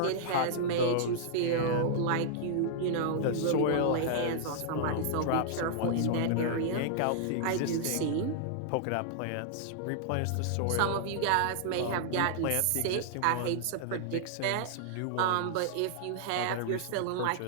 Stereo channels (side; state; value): both; different; correlation -0.01